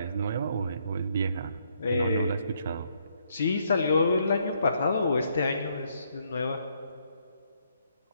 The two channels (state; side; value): inverted; both; correlation -0.73